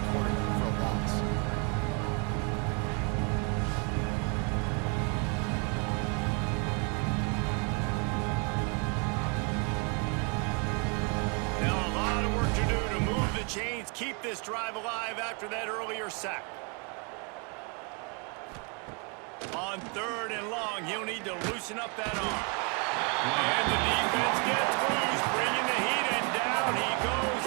quarterback for a loss. Now a lot of work to do to move the chains, keep this drive alive after that earlier sack. On third and long, he'll need to loosen up that arm. And the defense gets loose, bringing the heat, and down he goes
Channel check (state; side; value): quieter; left; 34.9 dB